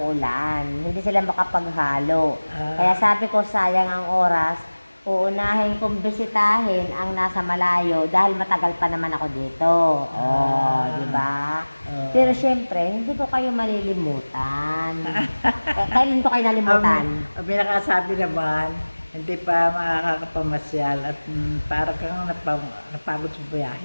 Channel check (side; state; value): both; inverted; correlation -1.00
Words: hindi sila makapaghalo. Kaya sabi ko sayang ang oras, uunahin kong bisitahin ang nasa malayo dahil matagal pa naman ako dito. Di ba? Pero syempre, hindi ko kayo malilimutan. Kailan ko kayo nalimutan? Ang pinakasabi naman, hindi pa makakapamasyal at para kang napagod sa